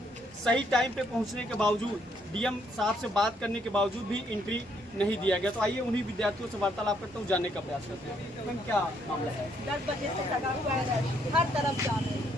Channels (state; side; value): normal; both; correlation 0.70